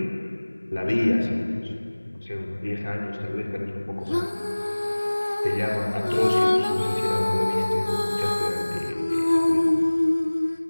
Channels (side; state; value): both; inverted; correlation -1.00